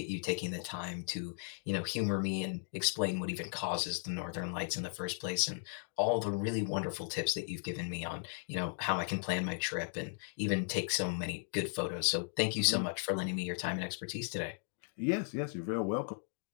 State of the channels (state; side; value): silent; right; digital silence